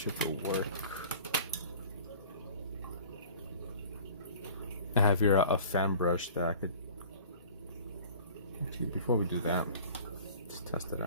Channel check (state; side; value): inverted; both; correlation -0.45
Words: it'll work. I have here a fan brush that I could. Actually, before we do that, let's test it